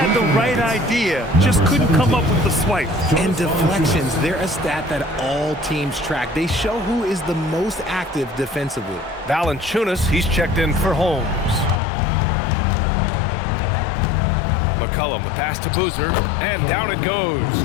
the right idea, just couldn't come up with the swipe. And deflections, they're a stat that all teams track. They show who is the most active defensively. Valanciunas, he's checked in for Holmes. McCollum, the pass to Boozer, and down it goes.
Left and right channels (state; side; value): drops out; right; at 11.8 s